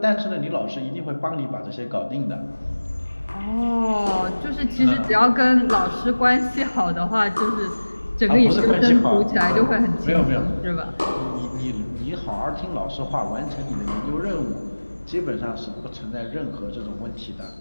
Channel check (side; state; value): both; inverted; correlation -1.00